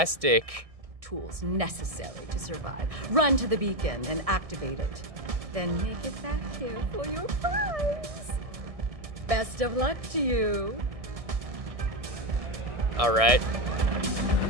Tools necessary to survive. Run to the beacon and activate it. Then make it back here for your prize. Best of luck to you. Alright.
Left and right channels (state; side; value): late; left; 1.6 ms